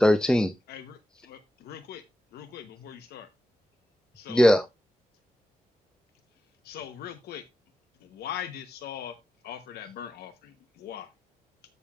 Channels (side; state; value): both; normal; correlation 0.91